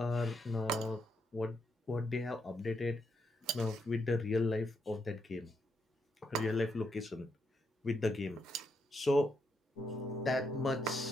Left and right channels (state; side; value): normal; both; correlation 0.79